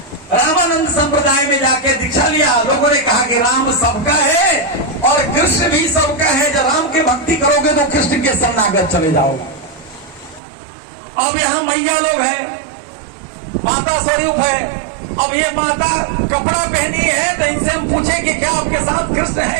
रामानंद संप्रदाय में जाके दीक्षा लिया। लोगों ने कहा कि राम सबका है और कृष्ण भी सबका है। जब राम की भक्ति करोगे तो कृष्ण के शरणागत चले जाओगे। अब यहाँ मैया लोग हैं, माता स्वरूप है। अब ये माता कपड़ा पहनी है तो इनसे हम पूछे कि क्या आपके साथ कृष्ण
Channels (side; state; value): left; drops out; at 10.4 s